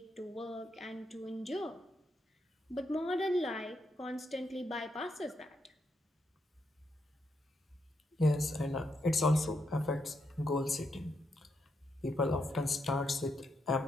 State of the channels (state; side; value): normal; both; correlation 0.81